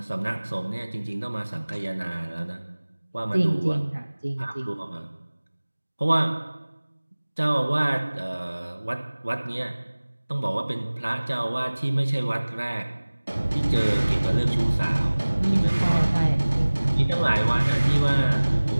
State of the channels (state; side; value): inverted; both; correlation -1.00